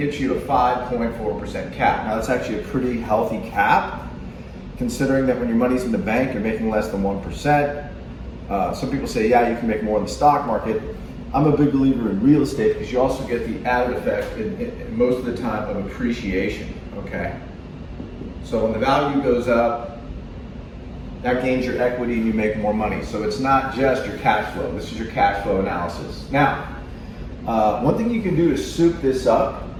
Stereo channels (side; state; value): both; identical; correlation 1.00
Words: you a 5.4% cap. Now that's actually a pretty healthy cap, considering that when your money's in the bank, you're making less than 1%. Some people say, yeah, you can make more in the stock market. I'm a big believer in real estate because you also get the added effect in most of the time of appreciation, okay? So when the value goes up, that gains your equity and you make more money. So it's not just your cash flow. This is your cash flow analysis. Now, one thing you can do to soup this up,